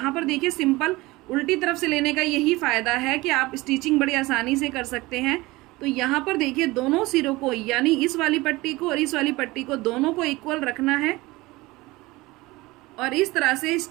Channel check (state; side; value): quieter; left; 20.9 dB